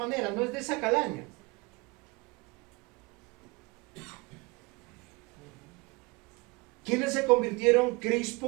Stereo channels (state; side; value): quieter; left; 26.2 dB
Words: no es de esa calaña. ¿Quiénes se convirtieron?